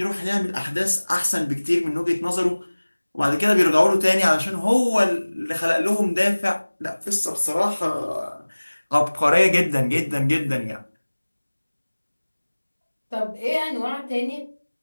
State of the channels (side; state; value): both; inverted; correlation -1.00